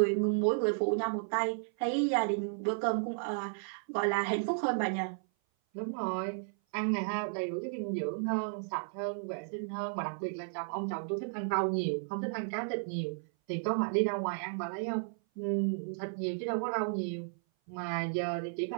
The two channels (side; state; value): left; silent; 55 dB below the other